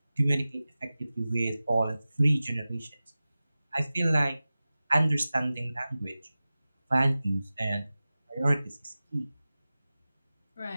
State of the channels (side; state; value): both; inverted; correlation -0.96